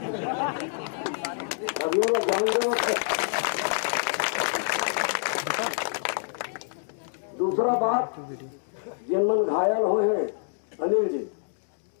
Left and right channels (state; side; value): silent; right; digital silence